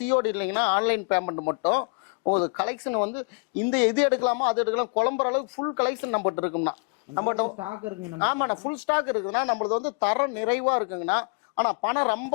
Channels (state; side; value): quieter; right; 35.8 dB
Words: இல்லைங்கன்னா ஆன்லைன் பேமெண்ட் மட்டும். உங்களுக்கு கலெக்ஷன் வந்து இந்த எது எடுக்கலாமோ அது எடுக்கலாம். குழம்புற அளவுக்கு ஃபுல் கலெக்ஷன் நம்மகிட்ட இருக்குங்கண்ணா. நம்மகிட்ட ஸ்டாக் இருக்குங்க. ஆமாண்ணா, ஃபுல் ஸ்டாக் இருக்குதுன்னா நம்மளது வந்து தரம் நிறைவா இருக்குங்கண்ணா. ஆனால் பணம்